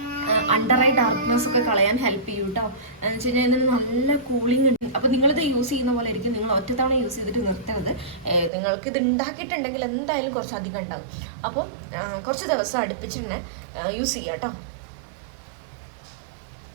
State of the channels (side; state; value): left; drops out; at 8.5 s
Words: under eye darkness ഒക്കെ കളയാൻ ഹെൽപ്പ് ചെയ്യും കേട്ടോ. എന്ന് വെച്ച് കഴിഞ്ഞാൽ ഇതിന് നല്ല കൂളിംഗ് ഉണ്ട്. അപ്പോൾ നിങ്ങളിത് യൂസ് ചെയ്യുന്ന പോലെ ആയിരിക്കും. നിങ്ങൾ ഒറ്റത്തവണ യൂസ് ചെയ്തിട്ട് നിർത്തരുത്. നിങ്ങൾക്ക് ഇത് ഉണ്ടാക്കിയിട്ടുണ്ടെങ്കിൽ എന്തായാലും കുറച്ചധികം ഉണ്ടാകും. അപ്പം കുറച്ച് ദിവസം അടുപ്പിച്ച് തന്നെ യൂസ് ചെയ്യാം കേട്ടോ.